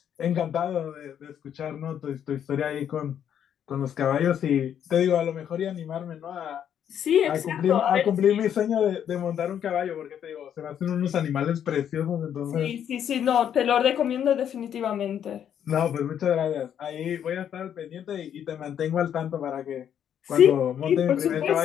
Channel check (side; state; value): right; quieter; 9.2 dB